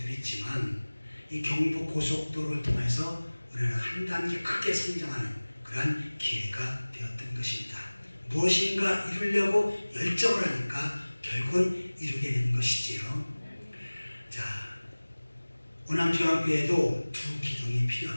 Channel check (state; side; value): inverted; both; correlation -1.00